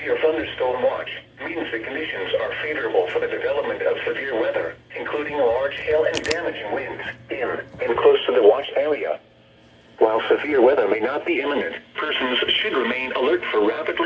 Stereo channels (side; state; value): both; identical; correlation 1.00